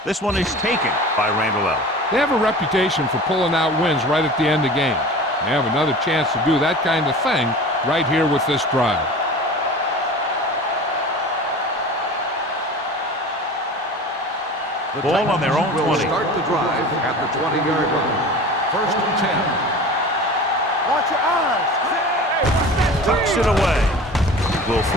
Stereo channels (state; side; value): normal; both; correlation 0.37